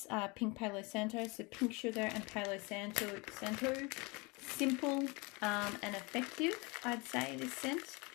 Pink Palo Santo. So pink sugar and Palo Santo. Simple and effective, I'd say, this scent.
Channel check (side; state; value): right; quieter; 27.4 dB